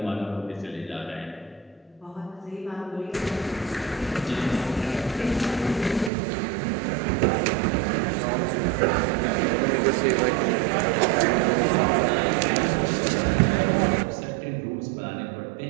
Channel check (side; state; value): left; drops out; at 6.1 s